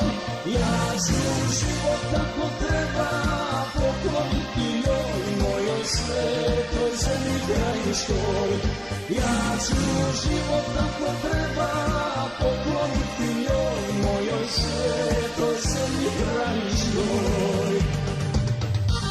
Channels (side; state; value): both; identical; correlation 1.00